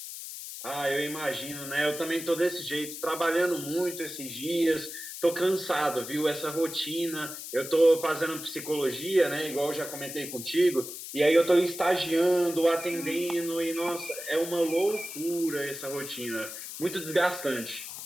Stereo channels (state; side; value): noise; left; hiss, 9 dB below the sound